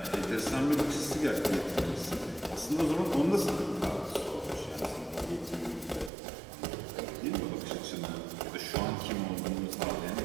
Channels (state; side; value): drops out; left; at 6.1 s